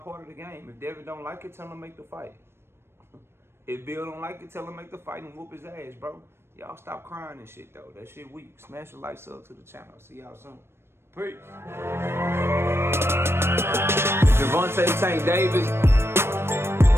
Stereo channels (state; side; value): late; left; 0.12 ms